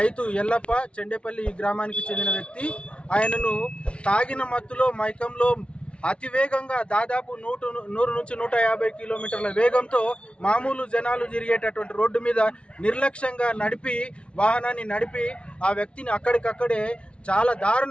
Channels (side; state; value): right; late; 0.059 ms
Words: ఎల్లప్ప చెండేపల్లి గ్రామానికి చెందిన వ్యక్తి, ఆయనను తాగిన మత్తులో మైకంలో అతివేగంగా దాదాపు 100 నుంచి 150 కిలోమీటర్ల వేగంతో మామూలు జనాలు తిరిగేటటువంటి రోడ్డు మీద నిర్లక్ష్యంగా వాహనాన్ని నడిపి ఆ వ్యక్తిని అక్కడికక్కడే చాలా